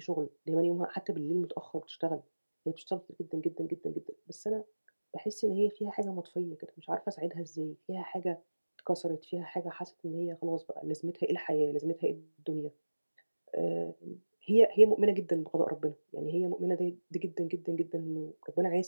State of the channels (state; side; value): inverted; both; correlation -1.00